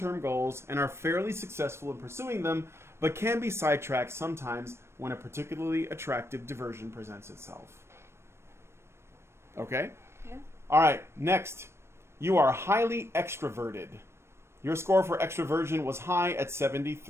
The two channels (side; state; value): left; late; 0.13 ms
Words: goals and are fairly successful in pursuing them, but can be sidetracked sometimes when a particularly attractive diversion presents itself. Okay? Yeah. All right, next. You are highly extroverted. Your score for extroversion was high at